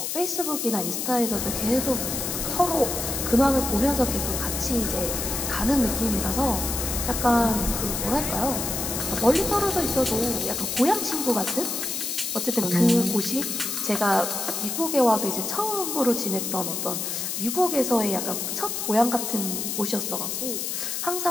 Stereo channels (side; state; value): left; noise; hiss, 3 dB below the sound